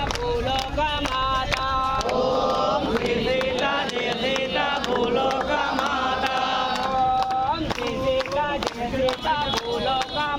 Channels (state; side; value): identical; both; correlation 1.00